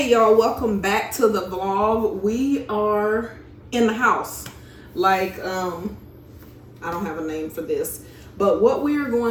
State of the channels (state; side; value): identical; both; correlation 1.00